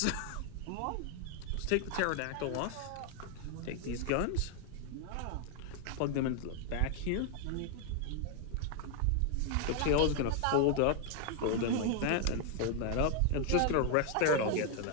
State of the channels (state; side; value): different; both; correlation 0.00